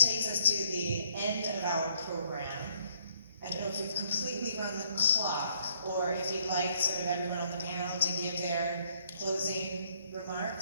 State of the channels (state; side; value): inverted; both; correlation -0.67